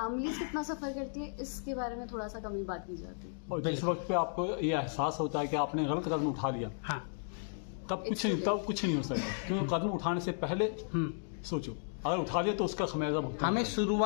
कितना सफर करती है, इसके बारे में थोड़ा सा कमी बात की जाती है। और जिस वक्त पे आपको ये एहसास होता है कि आपने गलत कदम उठा लिया, हाँ। तब कुछ नहीं हो सकता, क्योंकि कदम उठाने से पहले सोचो, अगर उठा लिया तो उसका खमियाजा भुगतना। हमें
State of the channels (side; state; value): right; silent; digital silence